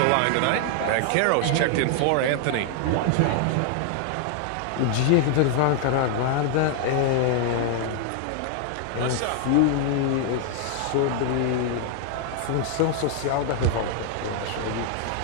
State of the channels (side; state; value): both; different; correlation 0.00